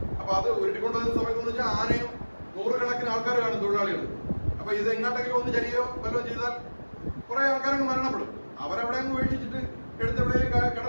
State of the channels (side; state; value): both; inverted; correlation -1.00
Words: അപ്പൊ അത് ഉരുട്ടിക്കൊണ്ടുവന്ന സമയത്ത് എന്ന് വെച്ചാൽ ആനയും 100 കണക്കിന് ആൾക്കാർ കാണും, തൊഴിലാളികൾ. അപ്പൊ ഇത് എങ്ങോട്ടെങ്കിലും ഒന്ന് ചരിയോ വല്ലതും ചെയ്താൽ കുറെ ആൾക്കാരങ്ങ് മരണപ്പെടും. അവരവിടെ അങ്ങ് വീഴ്ചിച്ചിട്ട് എടുത്തെവിടെയും